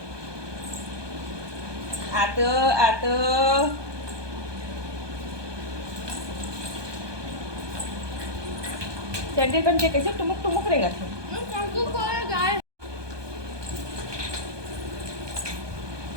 आतो आतो सैंडल पहन के कैसे टुमुक टुमुक रहेगा थे। गाय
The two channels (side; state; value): left; late; 1.2 ms